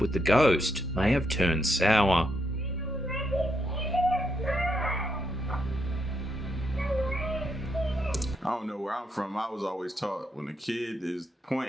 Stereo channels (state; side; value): normal; both; correlation 0.79